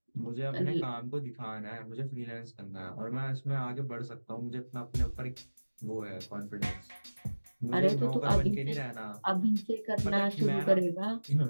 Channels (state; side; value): inverted; both; correlation -1.00